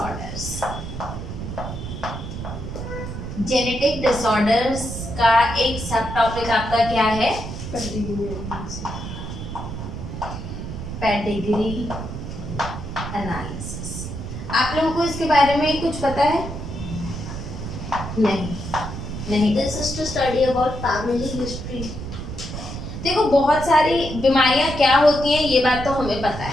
Genetic disorders का एक सब टॉपिक आपका क्या है? Pedigree analysis. आप लोगों को इसके बारे में कुछ पता है? नहीं। This is to study about family history. देखो बहुत सारी बीमारियां क्या होती हैं ये बात तो हमें पता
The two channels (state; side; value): noise; right; rumble, 7 dB below the sound